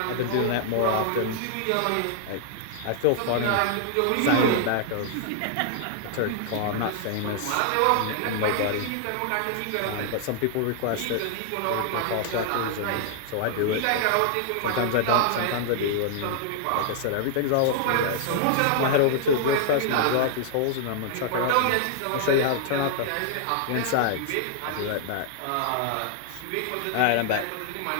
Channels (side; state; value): both; different; correlation -0.01